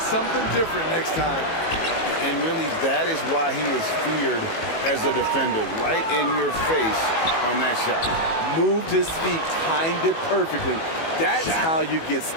different next time. And really, that is why he is feared as a defender. Right in your face on that shot. Moved his feet, timed it perfectly. That's how you get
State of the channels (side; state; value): right; late; 18 ms